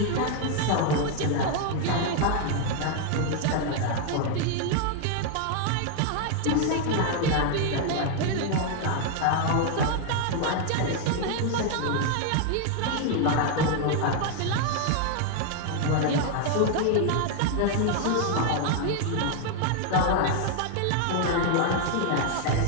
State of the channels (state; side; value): different; both; correlation 0.00